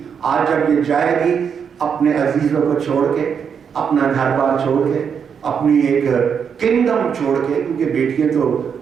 آج جب یہ جائے گی اپنے عزیزوں کو چھوڑ کے, اپنا گھر بار چھوڑ کے, اپنی ایک کنگڈم چھوڑ کے, کیونکہ بیٹیاں تو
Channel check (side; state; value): left; quieter; 7.0 dB